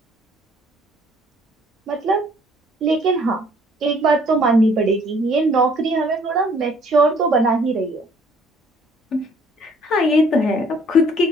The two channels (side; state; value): both; normal; correlation 0.59